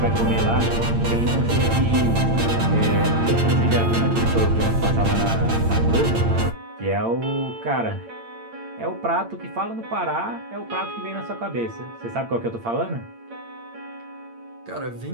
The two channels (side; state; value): left; late; 8.8 ms